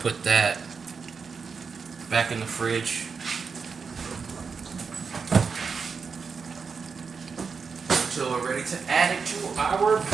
that back in the fridge. Until we're ready to add it to our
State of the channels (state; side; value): quieter; left; 5.4 dB